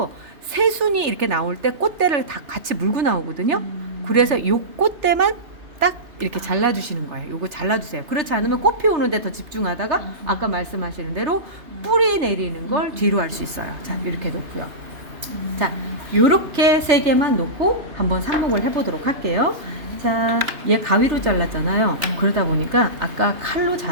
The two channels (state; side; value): late; left; 3.3 ms